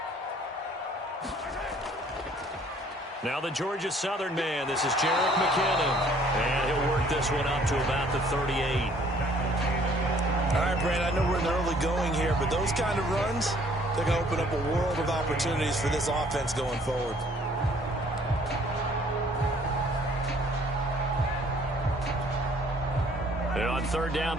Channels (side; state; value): both; normal; correlation 0.59